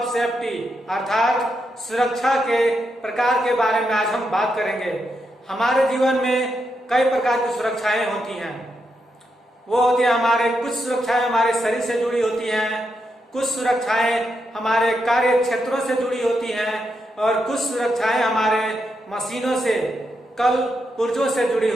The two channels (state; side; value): normal; both; correlation 0.83